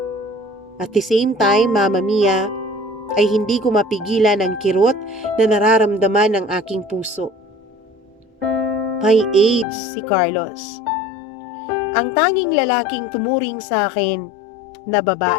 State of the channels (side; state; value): right; drops out; at 9.7 s